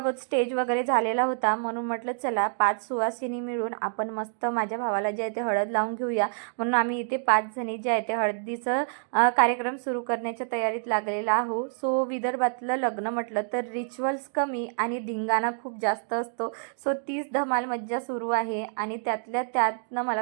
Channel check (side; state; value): left; silent; digital silence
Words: स्टेज वगैरे झालेला होता, म्हणून म्हटलं चला 5 सुवासिनी मिळून आपण मस्त माझ्या भावाला जे आहे ते हळद लावून घेऊया। म्हणून आम्ही इथे 5 जणी जे आहे ते हळदीचं कार्यक्रम सुरू करण्याच्या तयारीत लागलेला आहो। सो विदर्भातलं लग्न म्हटलं तर रिच्युअल्स कमी आणि धिंगाणा खूप जास्त असतो। सो तीच धमाल मज्जा सुरू आहे। आणि त्यातल्या त्यातनं